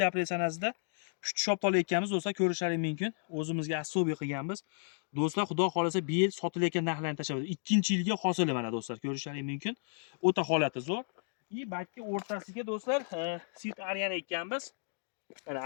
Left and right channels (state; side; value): silent; right; digital silence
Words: sanasida pushti shop olayotganmiz do'stlar, ko'rishlaring mumkin. O'zimizga assobiy qilganmiz. Do'stlar, xudo xolasa bu yil sotilayotgan narxlarni tashlab, 2-yilga hosili mana do'stlar, ko'rishlaring mumkin. O'ta holati zo'r. Balki o'rtasiga do'stlar, sit aryana ekkanmiz. Mana